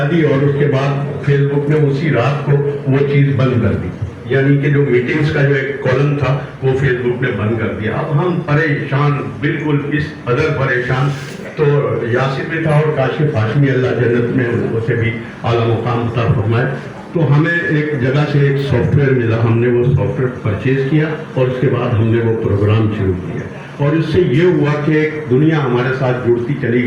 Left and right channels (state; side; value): identical; both; correlation 1.00